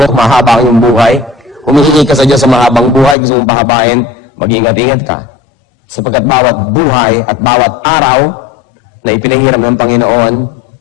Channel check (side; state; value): right; drops out; at 3.2 s